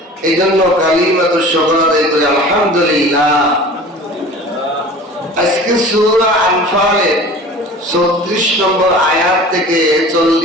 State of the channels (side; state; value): both; normal; correlation 0.41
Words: এই জন্য কালিমাতুশ শুকর আদায় করে আলহামদুলিল্লাহ। আজকে সূরা আনফালের 34 নম্বর আয়াত থেকে